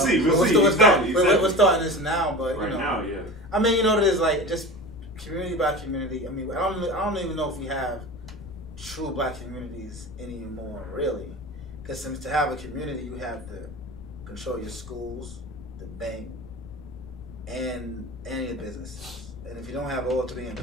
We're starting this now, but now, yeah. I mean, it is like just community by community. I mean, I don't even know if we have true black communities anymore, really. Because to have a community, you have to control your schools, the bank, and your businesses. And if you don't have all three in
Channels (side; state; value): left; noise; rumble, 15 dB below the sound